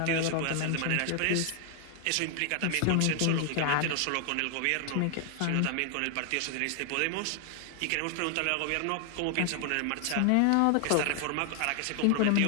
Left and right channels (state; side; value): different; both; correlation 0.00